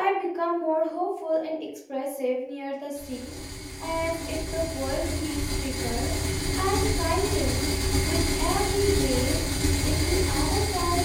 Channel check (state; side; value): identical; both; correlation 1.00